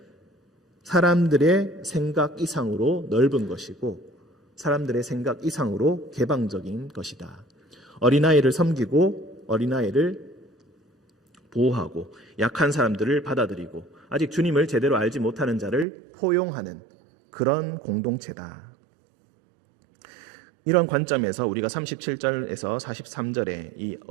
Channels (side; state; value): left; drops out; at 15.9 s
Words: 사람들의 생각 이상으로 넓은 것이고 사람들의 생각 이상으로 개방적인 것이다. 어린아이를 섬기고 어린아이를 보호하고 약한 사람들을 받아들이고 아직 주님을 제대로 알지 못하는 자를 포용하는 그런 공동체다. 이런 관점에서 우리가 37절에서 43절의 이